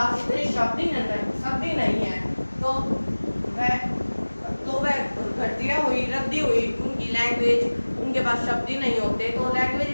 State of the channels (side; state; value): both; inverted; correlation -1.00